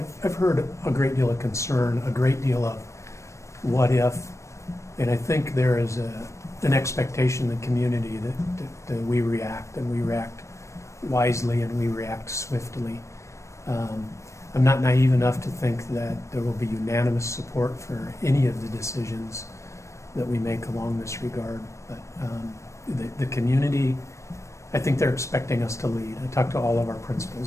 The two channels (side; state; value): right; late; 0.15 ms